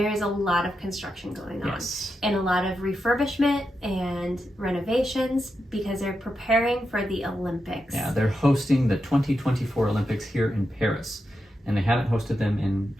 is a lot of construction going on. Yes. And a lot of refurbishment and renovations because they're preparing for the Olympics. Yeah, they're hosting the 2024 Olympics here in Paris, and they haven't hosted them in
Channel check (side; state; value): both; normal; correlation 0.87